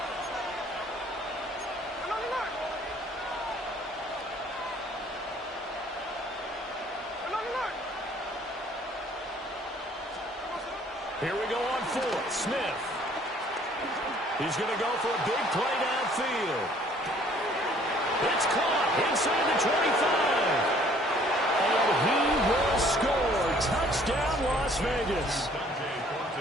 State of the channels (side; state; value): both; normal; correlation 0.58